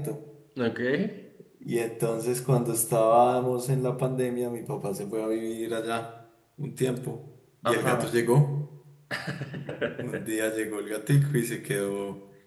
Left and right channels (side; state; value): both; identical; correlation 1.00